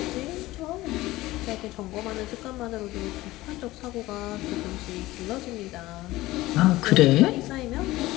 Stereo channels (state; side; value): quieter; right; 18.0 dB